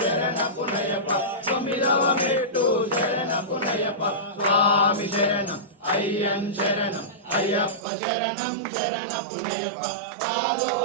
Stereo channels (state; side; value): drops out; left; at 7.9 s